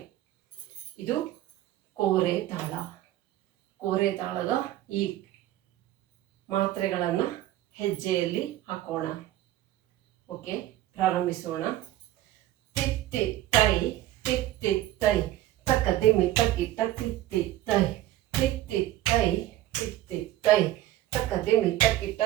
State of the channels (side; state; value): left; quieter; 14.4 dB